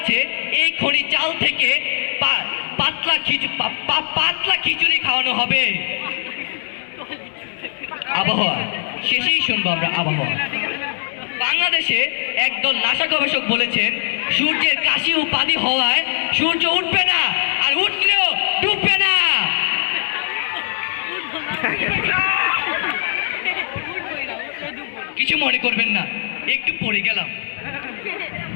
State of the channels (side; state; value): right; silent; 66 dB below the other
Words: এই খনি চাল থেকে পাতলা খিচুড়ি খাওয়ানো হবে। আবহাওয়া। শেষেই শুনবো আমরা আবহাওয়া। বাংলাদেশে একদল নাসা গবেষক বলেছেন সূর্যের কাশি উপাধি হওয়ায় সূর্য উঠবে না, আর উঠলেও ডুববে না। কিছু মনে করবেন না, একটু পড়ে গেলাম।